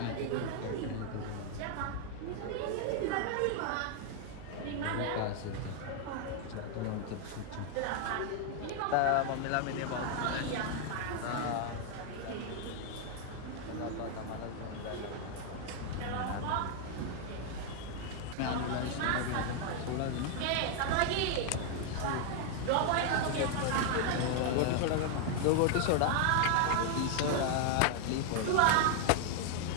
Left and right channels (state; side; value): different; both; correlation 0.00